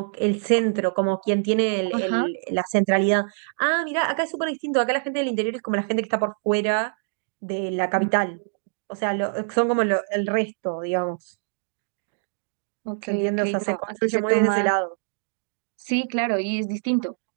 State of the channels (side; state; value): left; silent; digital silence